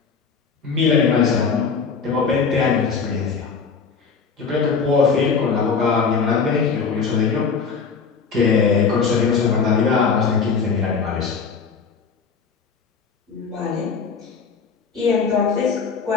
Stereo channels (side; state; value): right; quieter; 5.5 dB